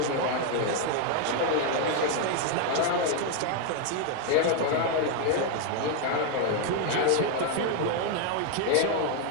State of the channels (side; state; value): both; different; correlation 0.01